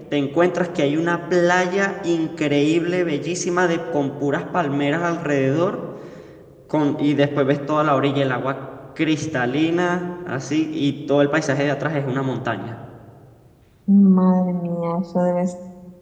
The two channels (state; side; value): identical; both; correlation 1.00